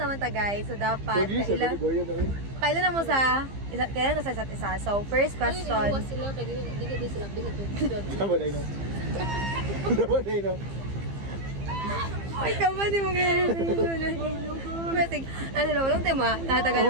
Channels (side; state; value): left; late; 15 ms